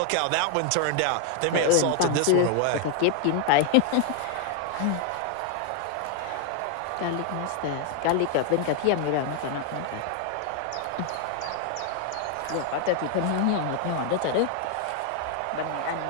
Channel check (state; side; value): different; both; correlation 0.00